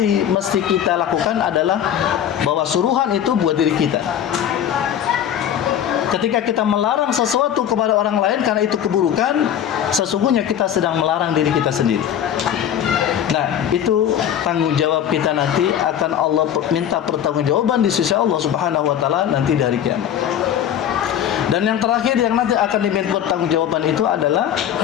mesti kita lakukan adalah bahwa suruhan itu buat diri kita. Ketika kita melarang sesuatu kepada orang lain karena itu keburukan, sesungguhnya kita sedang melarang diri kita sendiri. Nah, itu tanggung jawab kita nanti akan Allah minta pertanggungjawaban di sisi Allah Subhanahu wa taala nanti dari kiamat. Dan yang terakhir yang nanti akan diminta pertanggungjawaban itu adalah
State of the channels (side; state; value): right; quieter; 9.8 dB